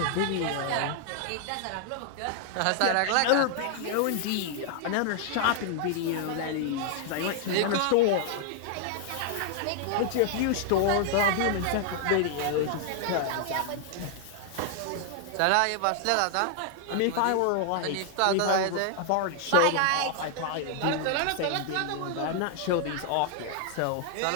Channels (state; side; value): different; both; correlation 0.00